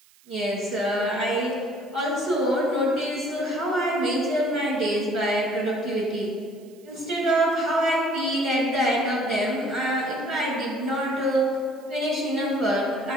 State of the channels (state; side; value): noise; right; hiss, 29 dB below the sound